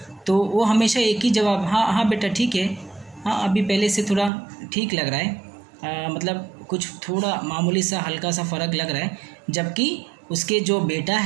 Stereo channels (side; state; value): left; drops out; at 4.3 s